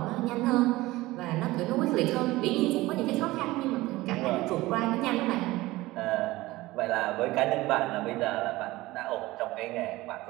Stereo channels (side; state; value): left; quieter; 18.9 dB